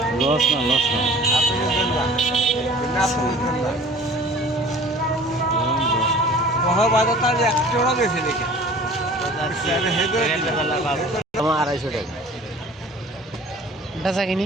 লস না, লস না, বেশি দেখে 250 টাকা বেচা কিনি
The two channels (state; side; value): normal; both; correlation 0.47